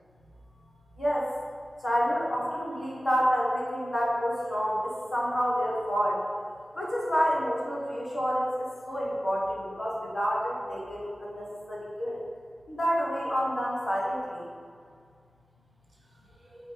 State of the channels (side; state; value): both; normal; correlation 0.96